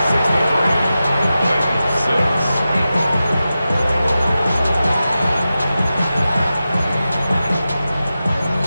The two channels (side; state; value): both; inverted; correlation -0.93